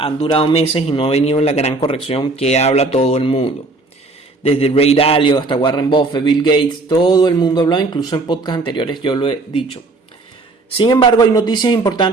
durado meses y no ha venido la gran corrección que habla todo el mundo. Desde Ray Dalio hasta Warren Buffett, Bill Gates, todo el mundo habló, incluso en podcasts anteriores yo lo he dicho. Sin embargo, hay noticias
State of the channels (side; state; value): left; quieter; 3.3 dB